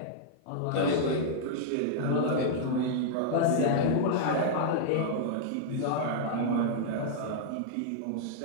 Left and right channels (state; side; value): different; both; correlation -0.01